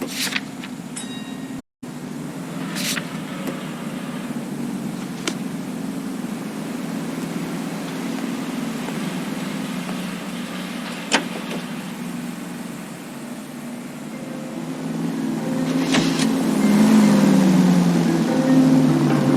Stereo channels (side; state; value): both; identical; correlation 1.00